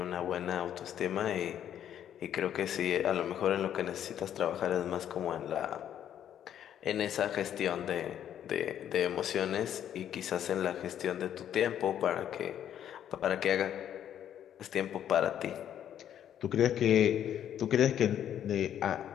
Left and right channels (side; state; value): right; quieter; 10.1 dB